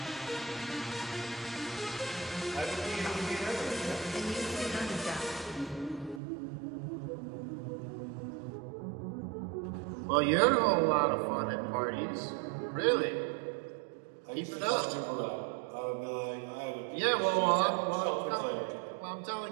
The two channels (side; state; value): left; drops out; at 6.2 s